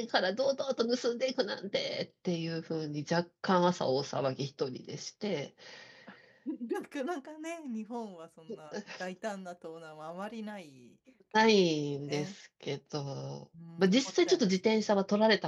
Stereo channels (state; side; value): identical; both; correlation 1.00